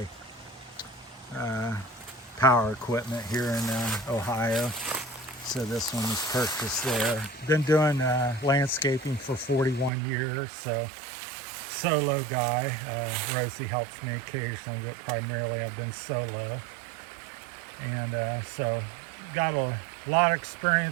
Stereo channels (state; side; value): drops out; left; at 9.9 s